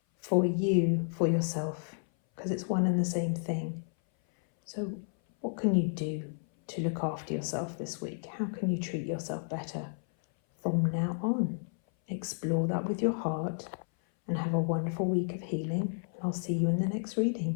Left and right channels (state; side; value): silent; right; 57 dB below the other